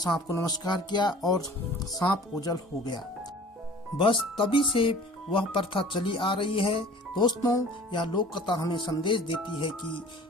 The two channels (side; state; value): both; normal; correlation 0.47